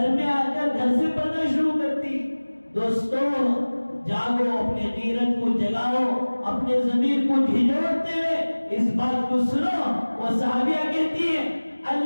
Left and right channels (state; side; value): inverted; both; correlation -1.00